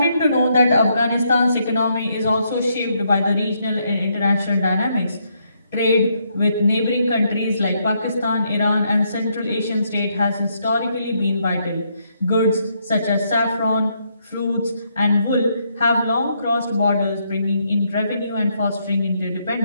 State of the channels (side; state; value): both; inverted; correlation -0.75